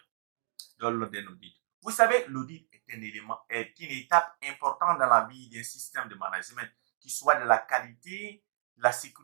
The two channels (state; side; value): silent; left; digital silence